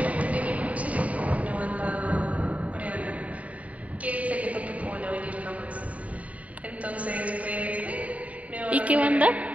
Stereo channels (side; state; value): left; late; 0.068 ms